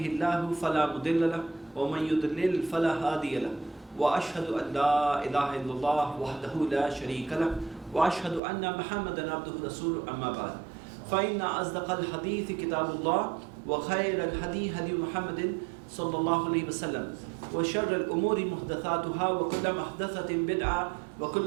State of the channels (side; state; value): left; drops out; at 8.4 s